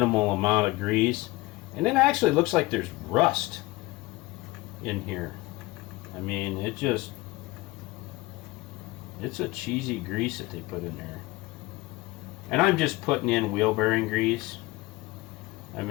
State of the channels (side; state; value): right; quieter; 20.9 dB